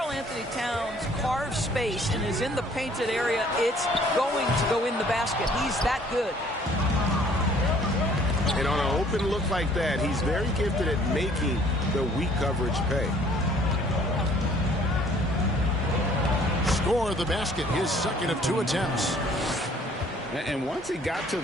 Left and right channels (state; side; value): normal; both; correlation 0.58